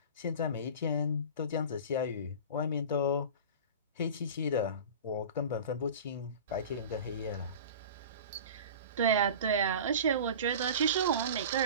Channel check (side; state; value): both; inverted; correlation -0.35